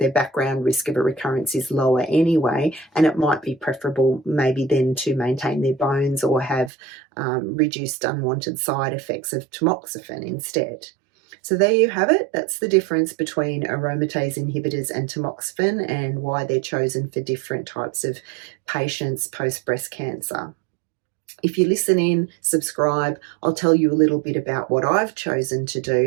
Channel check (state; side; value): drops out; left; at 6.7 s